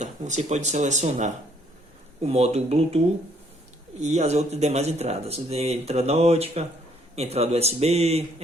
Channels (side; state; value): both; normal; correlation 0.66